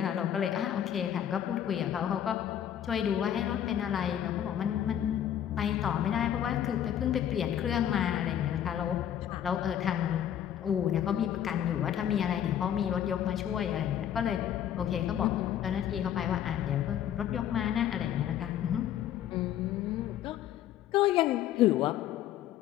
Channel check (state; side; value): quieter; right; 10.4 dB